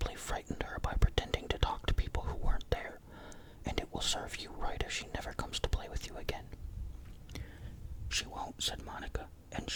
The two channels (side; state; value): both; identical; correlation 1.00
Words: frightened her by pretending to talk to people who weren't there, and it will serve you right if she never comes to play with you again. She won't, said Monica, and